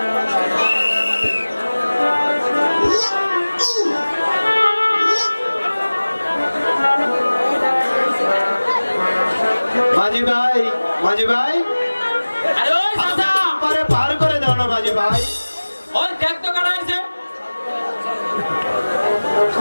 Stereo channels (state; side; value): inverted; both; correlation -1.00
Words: মাঝি ভাই, আরে ওই চাচা, পারে পার করে দাও না মাঝি ভাই। ওই দেখ তো কাটা আছে।